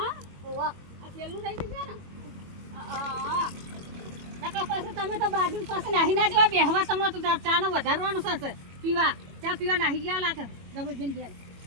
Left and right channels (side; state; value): left; late; 21 ms